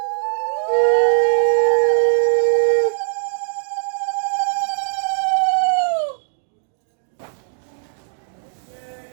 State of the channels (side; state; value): left; silent; digital silence